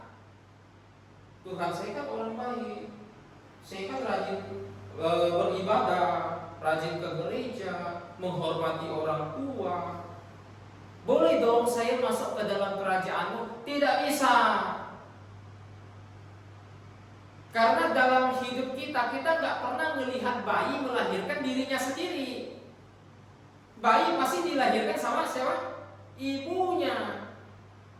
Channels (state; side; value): identical; both; correlation 1.00